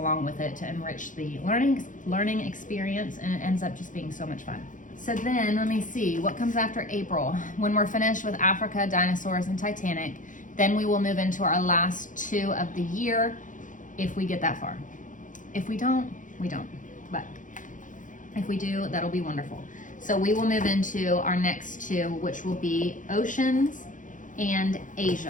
with it to enrich the learning experience, and it ends up just being so much fun. So then let me see what comes after April. When we're finished with Africa, dinosaurs, and Titanic, then we will move into our last 2 of the year if we get that far. If we don't, we don't, but if we do, that'll be wonderful. So we will move into our next 2, which will be oceans and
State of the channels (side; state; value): right; late; 0.38 ms